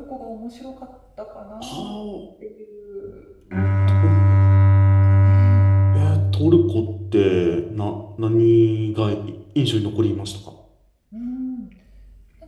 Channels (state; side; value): identical; both; correlation 1.00